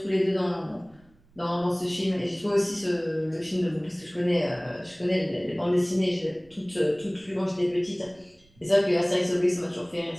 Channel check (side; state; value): right; noise; rumble, 30 dB below the sound